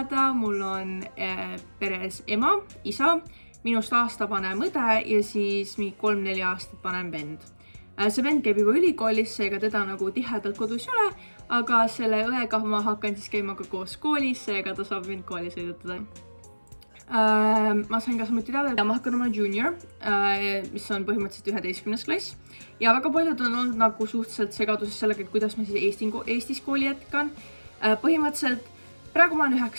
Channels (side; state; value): both; inverted; correlation -1.00